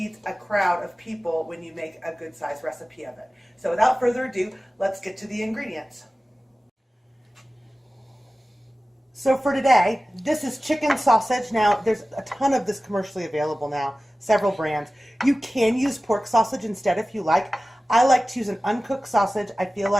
a crowd of people when you make a good sized recipe of it. So without further ado, let's get to the ingredients. So for today, this is chicken sausage. Now, there's a ton of this commercially available now, several brands. You can use pork sausage instead if you like. I like to use an uncooked sausage. I feel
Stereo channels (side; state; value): both; normal; correlation 0.96